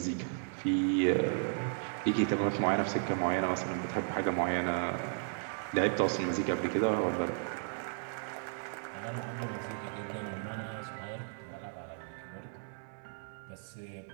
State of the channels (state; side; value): silent; left; digital silence